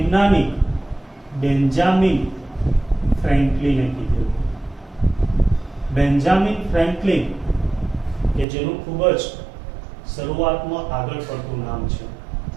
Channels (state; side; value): drops out; left; at 8.5 s